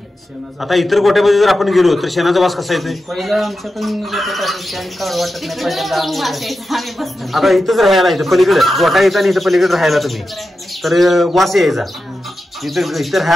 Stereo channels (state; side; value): normal; both; correlation 0.91